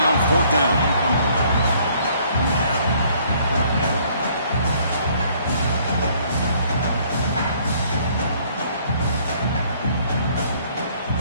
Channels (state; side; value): inverted; both; correlation -0.61